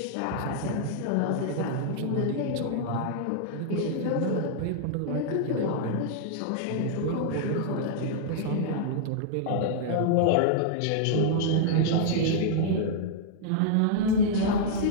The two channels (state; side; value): different; both; correlation -0.01